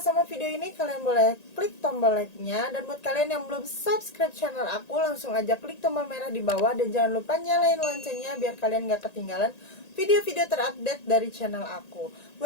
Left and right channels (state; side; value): late; right; 1.9 ms